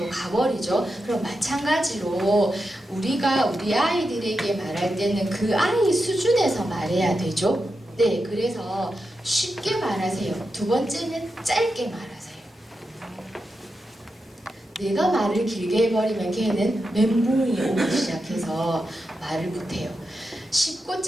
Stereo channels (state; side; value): normal; both; correlation 0.88